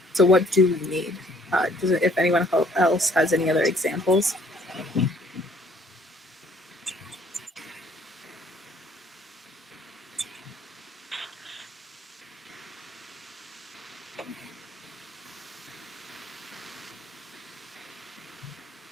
So what do we need? If anyone else has any other examples?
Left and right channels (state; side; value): normal; both; correlation 0.60